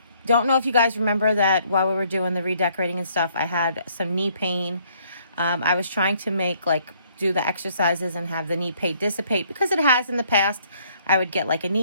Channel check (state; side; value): inverted; both; correlation -0.65